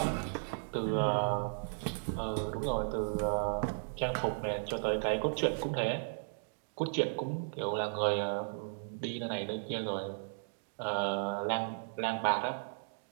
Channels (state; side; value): silent; left; digital silence